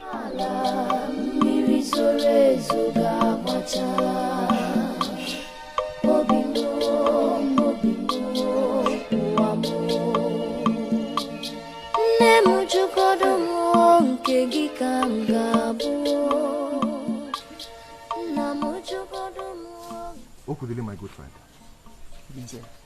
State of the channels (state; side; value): identical; both; correlation 1.00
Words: Okudele, my good friend. Obinze.